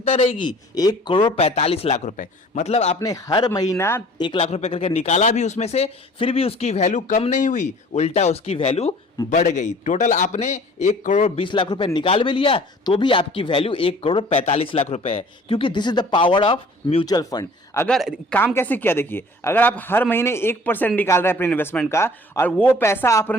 रहेगी, 1 करोड़ 45 लाख रुपए। मतलब आपने हर महीना 1 लाख रुपए करके निकाला भी उसमें से, फिर भी उसकी वैल्यू कम नहीं हुई, उल्टा उसकी वैल्यू बढ़ गई। टोटल आपने 1 करोड़ 20 लाख रुपए निकाल भी लिया तो भी आपकी वैल्यू 1 करोड़ 45 लाख रुपए है, क्योंकि this is the power of mutual fund. अगर काम कैसे किया, देखिए अगर आप हर महीने 1% निकाल रहे हैं अपने इन्वेस्टमेंट का और वो पैसा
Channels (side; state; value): both; normal; correlation 0.50